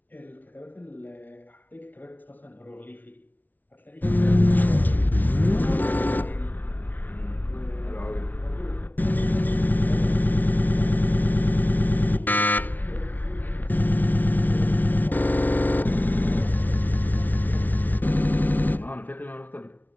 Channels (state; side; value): late; right; 0.081 ms